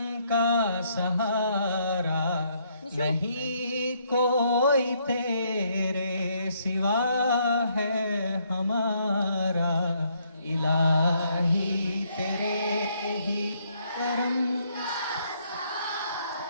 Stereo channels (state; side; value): inverted; both; correlation -0.71